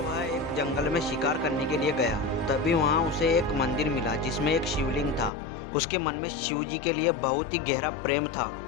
वह एक जंगल में शिकार करने के लिए गया। तभी वहां उसे एक मंदिर मिला जिसमें एक शिवलिंग था। उसके मन में शिव जी के लिए बहुत ही गहरा प्रेम था।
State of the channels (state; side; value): drops out; right; at 5.3 s